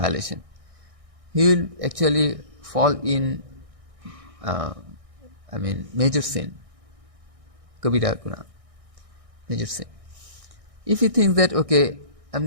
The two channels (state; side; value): late; left; 1.6 ms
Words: He will actually fall in, major sin. Kabira guna. Major sin. If he thinks that, okay, I'll